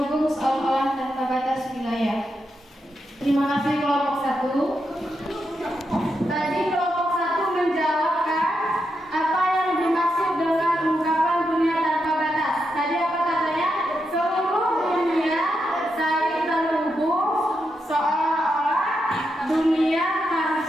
seolah-olah tanpa batas wilayah. Terima kasih kelompok 1. Tadi kelompok 1 menjawabkan apa yang dimaksud dengan ungkapan dunia tanpa batas. Tadi apa katanya? Seluruh dunia saling terhubung seolah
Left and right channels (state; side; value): normal; both; correlation 0.84